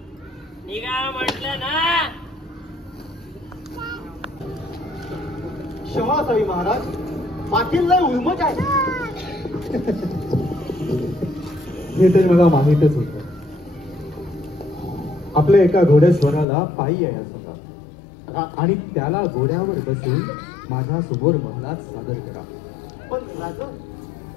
निघा म्हटलं ना. क्षमा असावी महाराज, पाटील लय उर्मट आहे. हे तर मला माहीतच होतं. आपल्या एका घोडेस्वराला पायी यायचं होता आणि त्याला घोड्यावर बसून माझ्या समोर महलात सादर करा. पण राजा,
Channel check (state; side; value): drops out; right; at 16.4 s